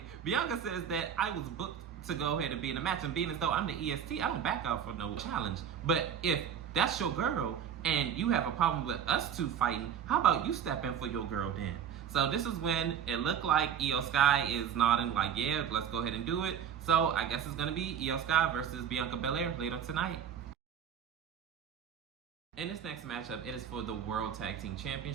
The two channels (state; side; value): quieter; left; 8.5 dB